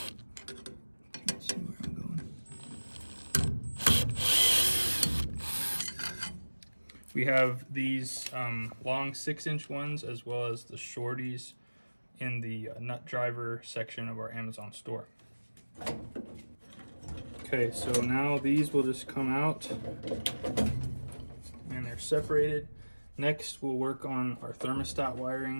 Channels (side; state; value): both; inverted; correlation -1.00